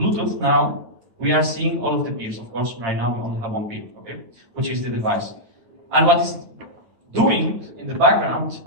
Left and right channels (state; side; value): late; left; 8.8 ms